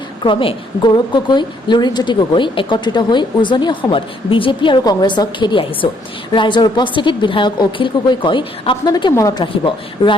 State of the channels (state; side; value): normal; both; correlation 0.68